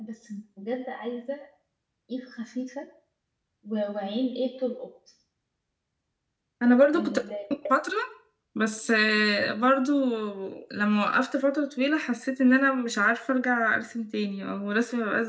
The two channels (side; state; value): both; identical; correlation 1.00